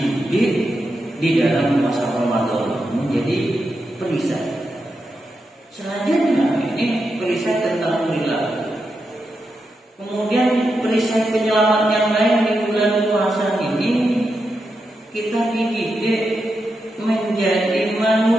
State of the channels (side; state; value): both; normal; correlation 0.86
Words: di dalam masa Ramadan menjadi perisai. Selanjutnya ini perisai tentang perilaku. Kemudian perisai penyelamat yang lain di bulan puasa ini, kita dididik menjadi